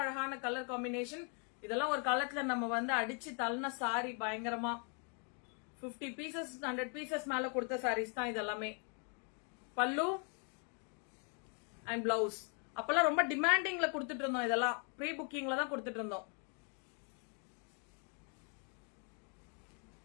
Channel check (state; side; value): quieter; right; 39.3 dB